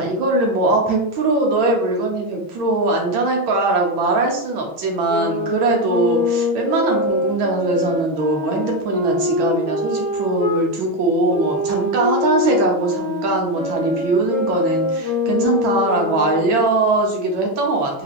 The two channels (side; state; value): left; late; 6.2 ms